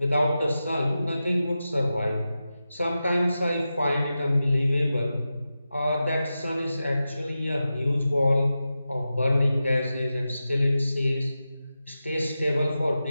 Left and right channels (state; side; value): inverted; both; correlation -0.92